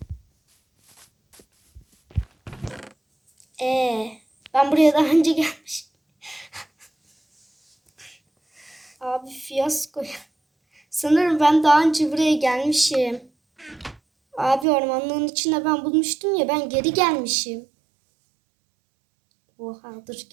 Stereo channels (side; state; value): left; drops out; at 14.7 s